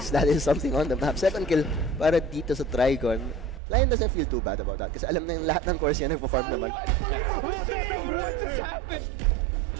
that is something on the map. Second kill para dito sa Trigon. Lion doesn't feel too bad about that. Kasi alam na yung lahat ng course yan nagpo-farm naman.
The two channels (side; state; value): left; drops out; at 3.6 s